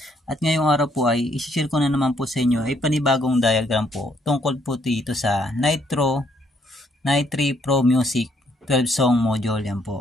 At ngayong araw po ay isi-share ko na naman po sa inyo ay panibagong diagram po tungkol po dito sa Nitro Pro Music 12 song module yan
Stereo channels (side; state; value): both; normal; correlation 0.70